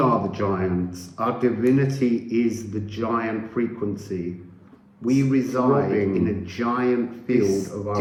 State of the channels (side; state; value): both; identical; correlation 1.00